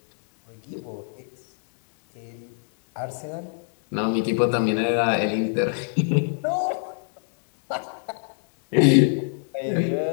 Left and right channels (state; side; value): silent; right; digital silence